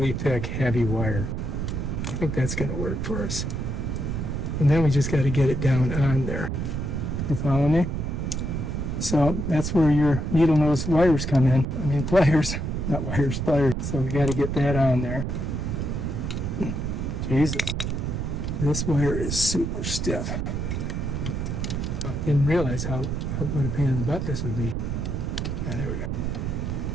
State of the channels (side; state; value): right; noise; rumble, 2 dB below the sound